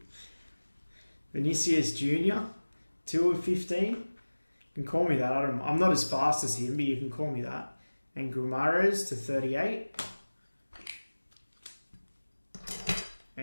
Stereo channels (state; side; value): inverted; both; correlation -1.00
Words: Vinicius Jr. 2 of 15? You can call me that. I'm not as fast as him, but you can call me that. And Gumares to 38.